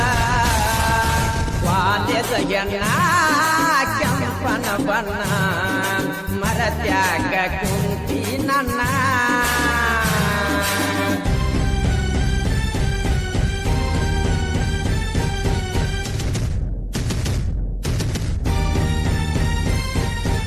ವಾಲ್ಯದ ಎಣ್ಣ ಕೆಂಪನ ಬಣ್ಣ ಮರತ್ಯಾಗ ಕುಂತಿ ನನ್ನ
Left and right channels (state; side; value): identical; both; correlation 1.00